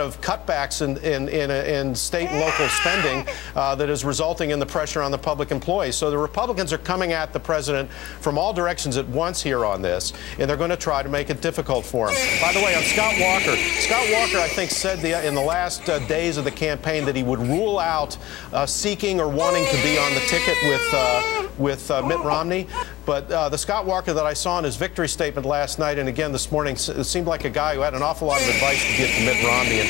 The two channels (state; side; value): quieter; right; 16.9 dB